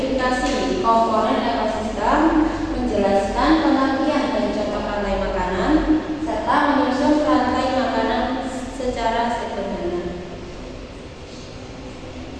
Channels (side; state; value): both; identical; correlation 1.00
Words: komponen ekosistem, menjelaskan pengertian dan contoh rantai makanan, serta menyusun rantai makanan secara sederhana.